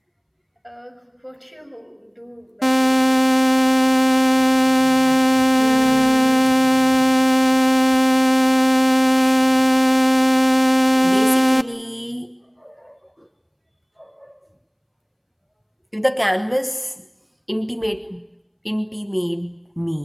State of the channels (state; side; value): identical; both; correlation 1.00